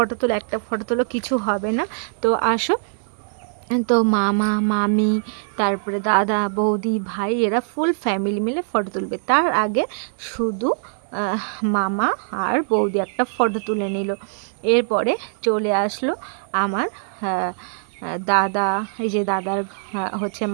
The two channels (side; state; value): left; silent; digital silence